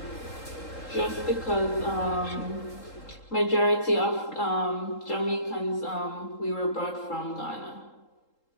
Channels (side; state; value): right; late; 3.8 ms